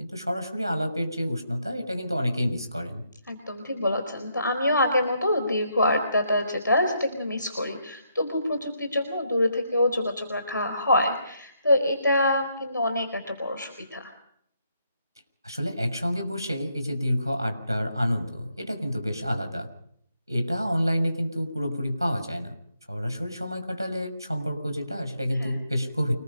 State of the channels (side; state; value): both; inverted; correlation -0.76